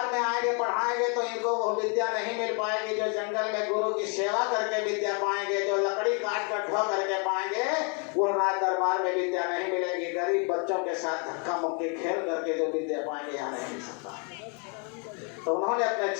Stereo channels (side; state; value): right; quieter; 37.2 dB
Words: में आएंगे पढ़ाएंगे तो इनको वो विद्या नहीं मिल पाएगी जो जंगल में गुरु की सेवा करके विद्या पाएंगे, जो लकड़ी काट कर ढो करके पाएंगे वो राज दरबार में विद्या नहीं मिलेगी। गरीब बच्चों के साथ धक्का मुक्की खेल करके जो विद्या पाएंगे यहाँ नहीं मिल सकता। तो उन्होंने अपने